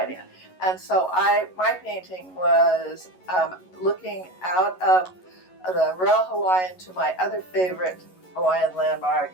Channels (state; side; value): late; right; 11 ms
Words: And so my painting was looking out of the Royal Hawaiian to my other favorite Hawaiian landmark,